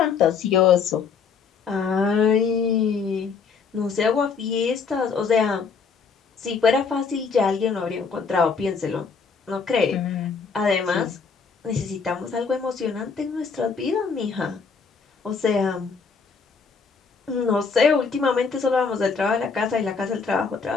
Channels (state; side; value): quieter; right; 5.5 dB